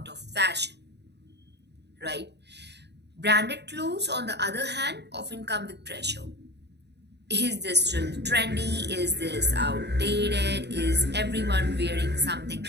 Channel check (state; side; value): late; left; 0.49 ms